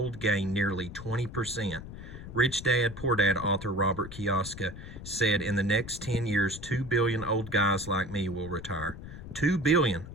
gained nearly 20%. Rich Dad, Poor Dad author Robert Kiyosaki said in the next 10 years, 2 billion old guys like me will retire. 2 billion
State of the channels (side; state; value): left; noise; rumble, 12 dB below the sound